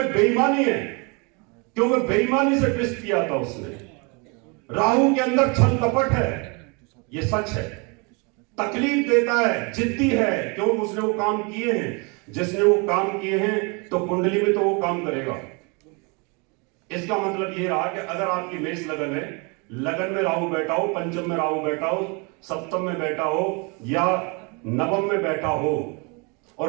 बेईमानी है, क्योंकि बेईमानी से ट्विस्ट किया था उसने। राहु के अंदर छल कपट है, ये सच है। तकलीफ देता है, जिद्दी है, क्योंकि उसने वो काम किए हैं। जिसने वो काम किए हैं तो कुंडली में तो वो काम करेगा। इसका मतलब ये रहा कि अगर आपकी मेष लगन है, लगन में राहु बैठा हो, पंचम में राहु बैठा हो, सप्तम में बैठा हो या नवम में बैठा हो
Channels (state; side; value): quieter; left; 31.4 dB